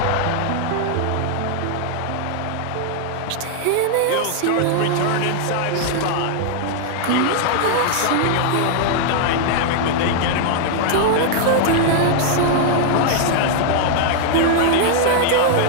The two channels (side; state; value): both; different; correlation 0.00